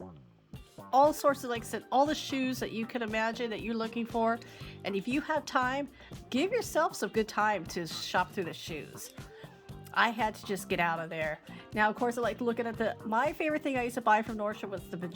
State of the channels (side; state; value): both; identical; correlation 1.00